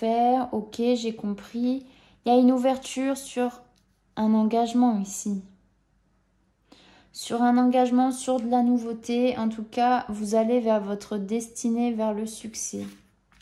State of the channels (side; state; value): both; identical; correlation 1.00